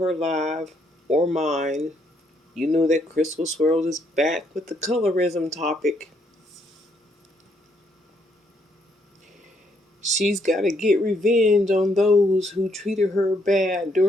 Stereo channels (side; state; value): both; normal; correlation 0.72